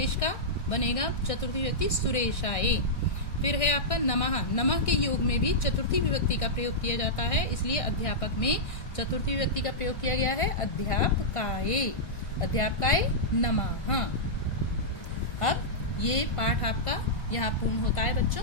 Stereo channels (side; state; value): right; late; 1.5 ms